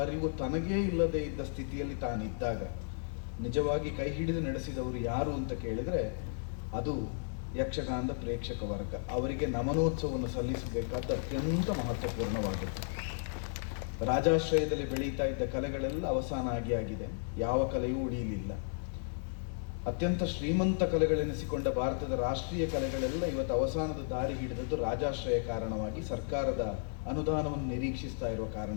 ಅರಿವು ತನಗೇ ಇಲ್ಲದೆ ಇದ್ದ ಸ್ಥಿತಿಯಲ್ಲಿ ತಾನಿದ್ದಾಗ ನಿಜವಾಗಿ ಕೈ ಹಿಡಿದು ನಡೆಸಿದವರು ಯಾರು ಅಂತ ಕೇಳಿದರೆ ಅದು ಯಕ್ಷಗಾನದ ಪ್ರೇಕ್ಷಕ ವರ್ಗ. ಅವರಿಗೆ ನಮನೋತ್ಸವವನ್ನು ಸಲ್ಲಿಸಬೇಕಾದ ಅತ್ಯಂತ ಮಹತ್ವಪೂರ್ಣವಾಗುತ್ತೆ. ರಾಜಾಶ್ರಯದಲ್ಲಿ ಬೆಳೀತಾ ಇದ್ದ ಕಲೆಗಳೆಲ್ಲ ಅವಸಾನ ಆಗಿದೆ. ಯಾವ ಕಲೆಯೂ ಉಳಿಯಲಿಲ್ಲ. ಅತ್ಯಂತ ಶ್ರೀಮಂತ ಕಲೆಗಳೆನಿಸಿಕೊಂಡ ಭಾರತದ ರಾಷ್ಟ್ರೀಯ ಕಲೆಗಳೆಲ್ಲ ಇವತ್ತು ಅವಸಾನದ ದಾರಿ ಹಿಡಿದದ್ದು ರಾಜಾಶ್ರಯ ಕಾರಣವಾಗಿ, ಸರ್ಕಾರದ ಅನುದಾನವನ್ನು ನಿರೀಕ್ಷಿಸ್ತಾ ಇರುವ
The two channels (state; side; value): silent; right; digital silence